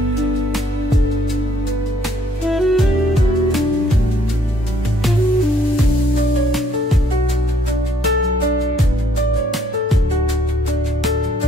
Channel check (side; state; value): both; normal; correlation 0.64